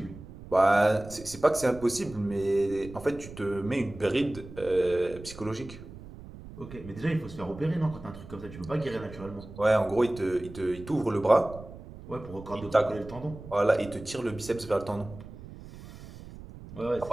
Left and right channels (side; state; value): right; noise; rumble, 15 dB below the sound